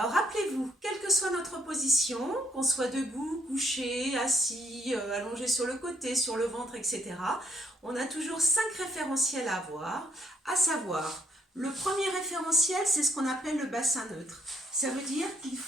rappelez-vous, quelle que soit notre position, qu'on soit debout, couché, assis, allongé sur le côté, sur le ventre, etc., on a toujours 5 référentiels à avoir, à savoir, le premier référentiel, c'est ce qu'on appelle le bassin neutre. Ça veut dire qu'il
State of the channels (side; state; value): both; normal; correlation 0.70